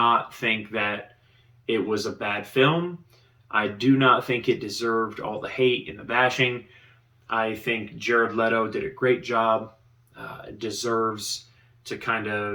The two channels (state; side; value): identical; both; correlation 1.00